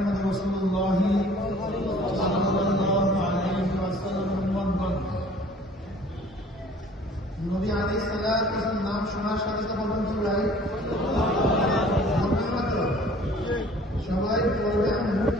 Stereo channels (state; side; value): normal; both; correlation 0.51